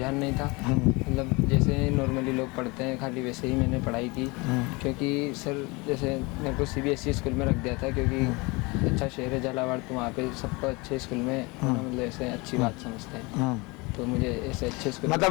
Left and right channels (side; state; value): right; quieter; 26.0 dB